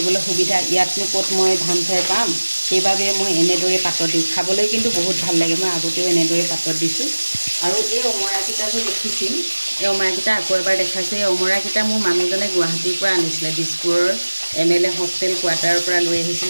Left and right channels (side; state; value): both; inverted; correlation -1.00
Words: সুবিধা। ইয়াতনো ক'ত মই ধান খেৰ পাম, সেইবাবে মই এনেদৰে পাতত দিওঁ। খাবলৈ কিন্তু বহুত ভাল লাগে। মই আগতেও এনেদৰে পাতত দিছোঁ। আৰু এই অমৰাকেইটা যে দেখিছিল, এই অমৰাকেইটা আকৌ এবাৰ দেখাইছোঁ। এই অমৰাকেইটা মোৰ মানুহজনে গুৱাহাটীৰ পৰা আনিছিলে, দিছপুৰৰ MLA হোষ্টেল কোৱাৰ্টাৰৰ পৰা লৈ